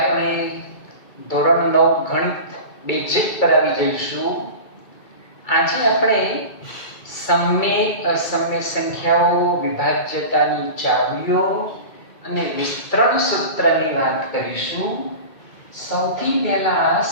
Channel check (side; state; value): right; late; 2.3 ms